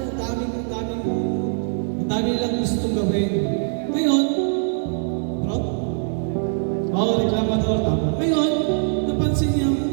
ang dami nilang gustong gawin. Ngayon, bro? Oo, reklamador, tama. Ngayon, napansin niya ang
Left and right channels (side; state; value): left; silent; digital silence